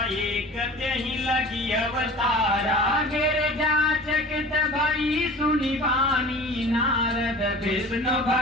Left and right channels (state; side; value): normal; both; correlation 0.41